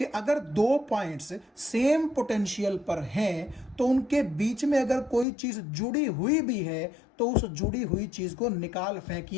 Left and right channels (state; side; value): drops out; right; at 5.2 s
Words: अगर 2 पॉइंट्स सेम पोटेंशियल पर हैं, तो उनके बीच में अगर कोई चीज जुड़ी हुई भी है, तो उस जुड़ी हुई चीज को निकाल